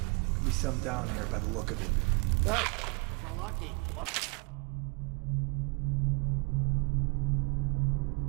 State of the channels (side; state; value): left; quieter; 31.1 dB